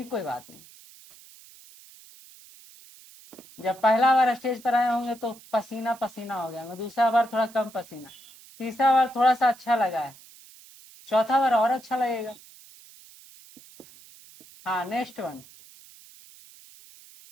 कोई बात नहीं, जब पहला बार स्टेज पर आए होंगे तो पसीना पसीना हो गया, दूसरा बार थोड़ा कम पसीना, तीसरा बार थोड़ा सा अच्छा लगा है, चौथा बार और अच्छा लगेगा। हाँ, नेक्स्ट वन।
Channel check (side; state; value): right; noise; hiss, 22 dB below the sound